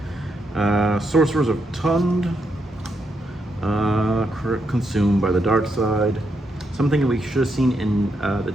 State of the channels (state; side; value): normal; both; correlation 0.80